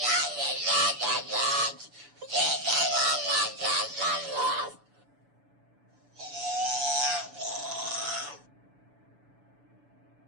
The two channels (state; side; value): late; left; 6.9 ms